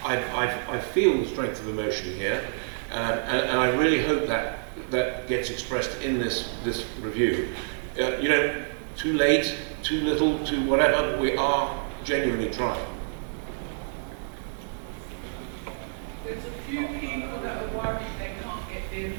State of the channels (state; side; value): silent; left; digital silence